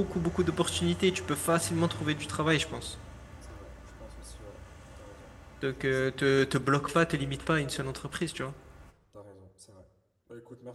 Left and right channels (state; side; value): identical; both; correlation 1.00